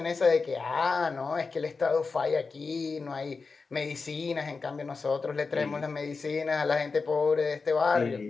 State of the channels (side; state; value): right; quieter; 4.5 dB